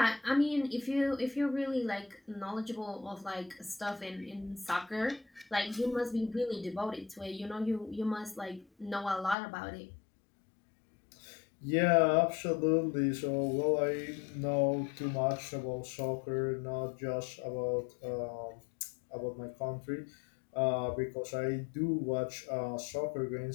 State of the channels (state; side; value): drops out; right; at 9.3 s